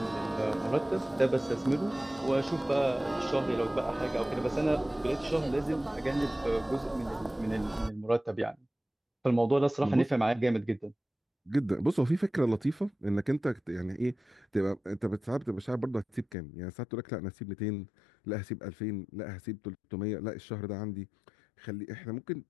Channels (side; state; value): right; drops out; at 16.4 s